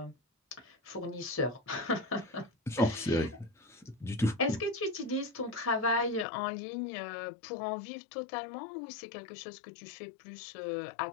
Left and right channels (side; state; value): right; drops out; at 6.2 s